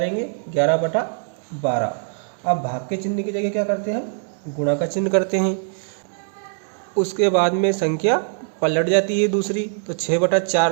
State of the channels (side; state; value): left; silent; digital silence